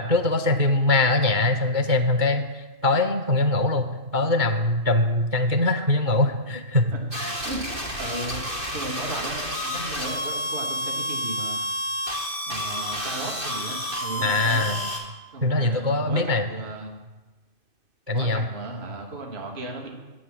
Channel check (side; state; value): left; late; 2.5 ms